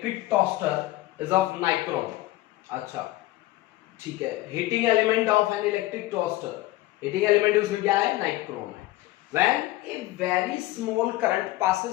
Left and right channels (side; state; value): right; quieter; 17.2 dB